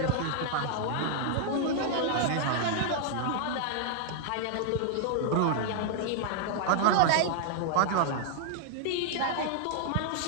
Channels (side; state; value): both; different; correlation -0.01